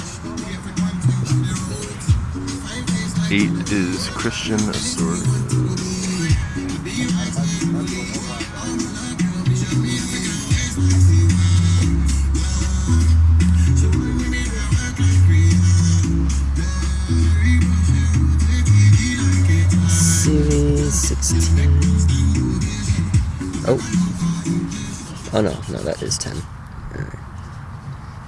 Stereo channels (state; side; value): identical; both; correlation 1.00